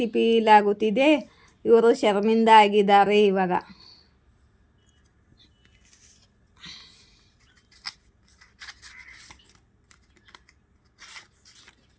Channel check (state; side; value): identical; both; correlation 1.00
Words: ಫೀಲ್ ಆಗುತ್ತಿದೆ, ಇವರು ಶರ್ಮಿಂದ ಆಗಿದ್ದಾರೆ ಇವಾಗ.